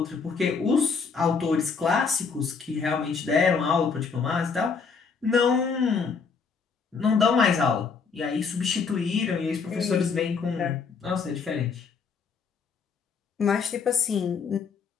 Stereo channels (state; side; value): quieter; right; 5.4 dB